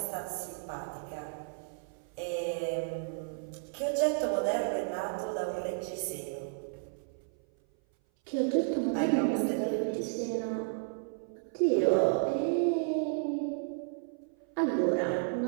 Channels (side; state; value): left; silent; 56 dB below the other